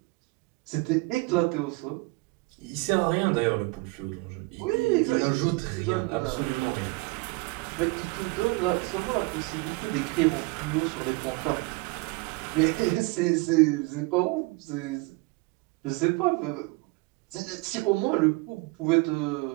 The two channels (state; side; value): quieter; left; 25.2 dB